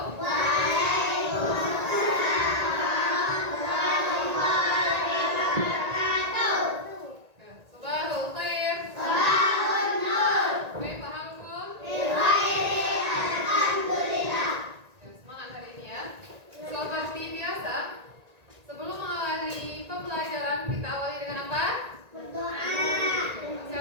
Sabahul khair. Sabahun nur. Kaifa halukum? Alhamdulillah. Semangat hari ini ya. Seperti biasa, sebelum mengawali pembelajaran kita awali dengan apa? Berdoa.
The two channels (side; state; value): left; late; 1.8 ms